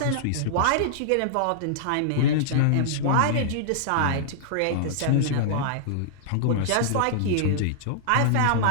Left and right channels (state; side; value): different; both; correlation -0.02